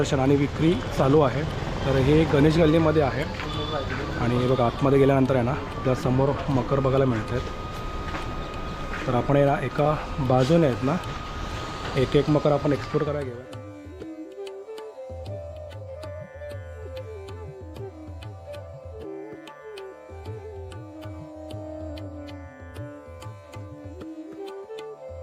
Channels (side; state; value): both; identical; correlation 1.00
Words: आणि विक्री चालू आहे. तर हे गणेश गल्लीमध्ये आहे आणि बघा, आतमध्ये गेल्यानंतर आहे ना, त्या समोर मकर बघायला मिळत आहेत. तर आपण आहे ना, एका बाजूने आहेत ना, एक एक मकर आपण एक्सप्लोर करायला घेऊया.